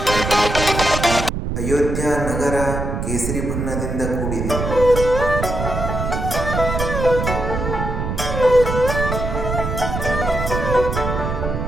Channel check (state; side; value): noise; right; rumble, 3 dB below the sound